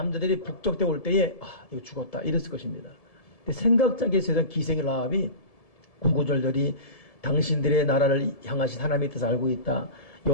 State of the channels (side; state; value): right; late; 1.7 ms